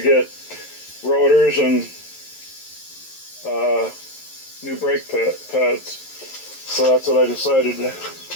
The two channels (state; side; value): late; right; 11 ms